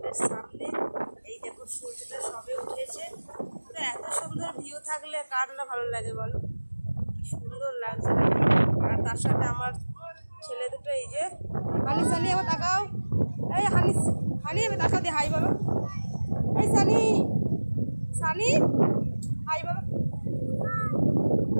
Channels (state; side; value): inverted; both; correlation -1.00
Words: সামনে। এই দেখো সূর্যটা সবে উঠেছে। তো এত সুন্দর ভিউ থাকলে কার না ভালো লাগে বলো, কি সুন্দর লাগছে। আর তার সাথে আমার ছেলে দুটো, এই যে হানি সানি, আবার তাকাও, এই হানি হানি এবার তাকাও দিয়ে হাই বলো, এই সানি সানি হাই বলো।